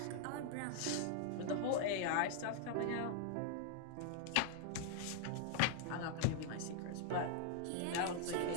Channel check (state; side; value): different; both; correlation 0.00